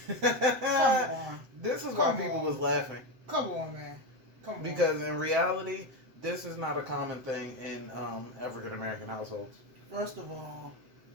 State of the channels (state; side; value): late; left; 7.7 ms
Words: Come on. This is why Come people on. was laughing. Come on, man. Come on. Because in reality, this is not a common thing in African American households. First of all,